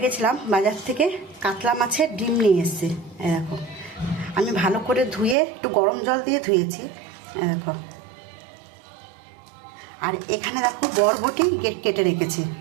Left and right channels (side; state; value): left; drops out; at 5.4 s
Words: গেছিলাম, বাজার থেকে কাতলা মাছের ডিম নিয়ে এসেছি। দেখো, আমি ভালো করে ধুয়ে একটু গরম জল দিয়ে ধুয়েছি। দেখো, আর এখানে দেখো বরবটি কেটে রেখেছি।